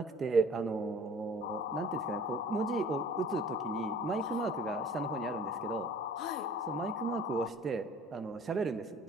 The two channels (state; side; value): normal; both; correlation 0.48